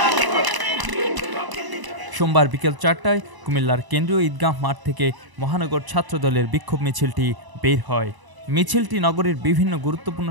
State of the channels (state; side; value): late; left; 1.0 ms